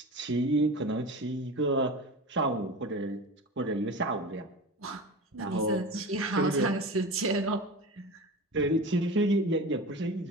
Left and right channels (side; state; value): both; normal; correlation 0.31